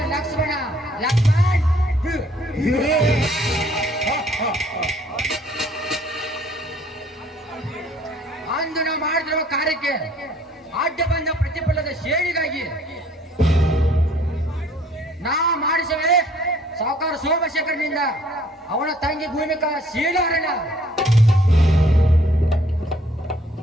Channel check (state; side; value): normal; both; correlation 0.59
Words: ಲಕ್ಷ್ಮಣ ಅಂದು ನಾವು ಮಾಡಿದಿರುವ ಕಾರ್ಯಕ್ಕೆ ಅಡ್ಡ ಬಂದ ಪ್ರತಿಫಲದ ಶೇಡಿಗಾಗಿ ನಾ ಮಾಡಿಸವೆ ಸಾವುಕಾರ ಸೋಮಶೇಖರನಿಂದ ಅವನ ತಂಗಿ ಭೂಮಿಕಾ ಶೀಲಾರಣ